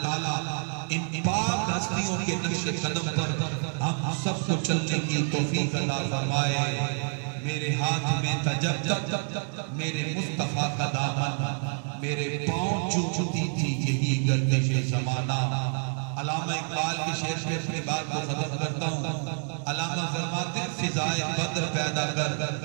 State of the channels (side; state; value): left; silent; 59 dB below the other